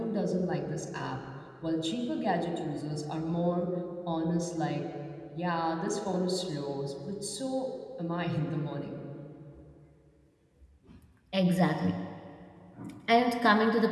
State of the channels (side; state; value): both; identical; correlation 1.00